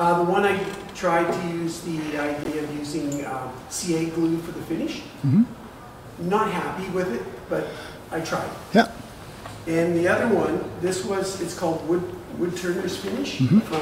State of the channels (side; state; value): both; identical; correlation 1.00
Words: one I tried to use the idea of using CA glue for the finish. Mm-hmm. Not happy with it, but I tried. Yeah. And the other one, it's called Woodturners Finish Mm-hmm.